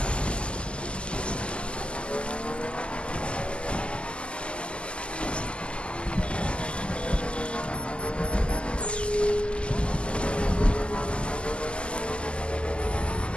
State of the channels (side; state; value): right; late; 0.052 ms